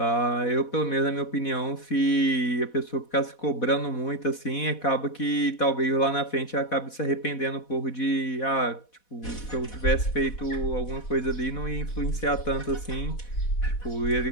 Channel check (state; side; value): late; right; 4.1 ms